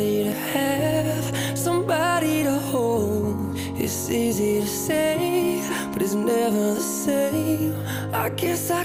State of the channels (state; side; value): identical; both; correlation 1.00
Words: to have, somebody to hold. It's easy to say, but it's never the same. I guess I